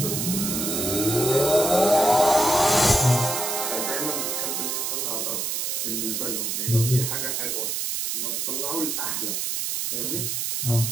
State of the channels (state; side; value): noise; right; hiss, 1 dB below the sound